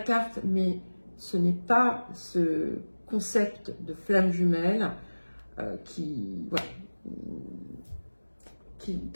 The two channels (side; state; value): both; inverted; correlation -1.00